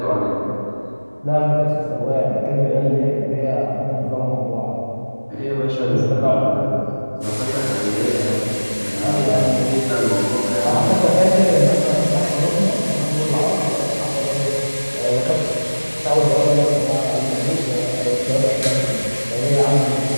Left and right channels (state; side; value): inverted; both; correlation -1.00